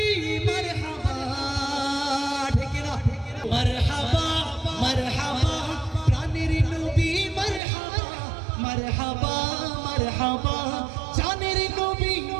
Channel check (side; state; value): left; drops out; at 7.6 s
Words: মারহাবা ঠিক না মারহাবা মারহাবা প্রাণের নবী মারহাবা মারহাবা মারহাবা জানের নবী